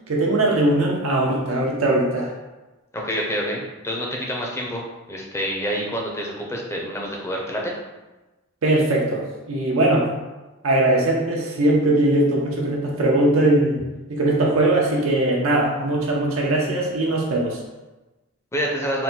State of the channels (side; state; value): both; normal; correlation 0.27